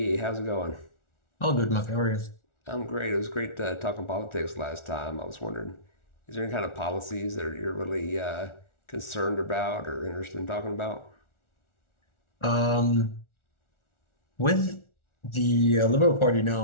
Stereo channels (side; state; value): right; late; 1.4 ms